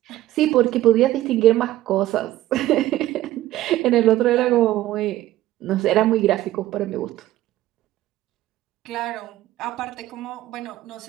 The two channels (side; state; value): left; quieter; 15.1 dB